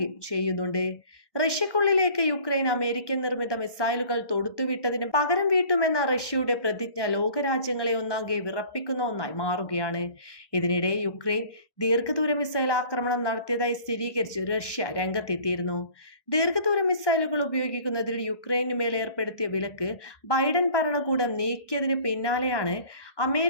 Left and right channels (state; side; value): late; right; 1.2 ms